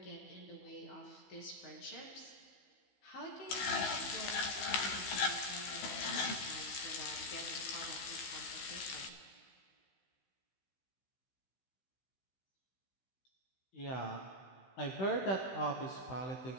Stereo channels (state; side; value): late; right; 16 ms